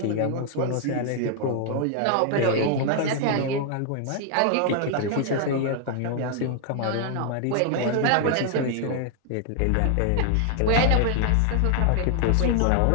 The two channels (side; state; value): both; different; correlation 0.00